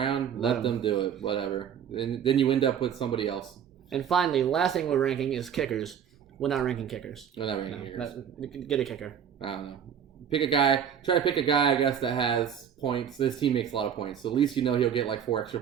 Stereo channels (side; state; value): left; quieter; 8.5 dB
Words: let them do it. Whatever. And then you end up with somebody else. And finally, last thing we're ranking is kickers. We're not ranking kickers. We're not ranking kickers. Get a kicker. I don't know. Pick a guy. Try to pick a guy, I guess, that has points. This team makes a lot of points, so at least you know he'll get like 4 extra